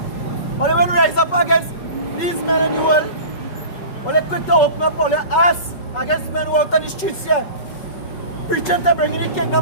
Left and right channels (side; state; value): right; late; 5.3 ms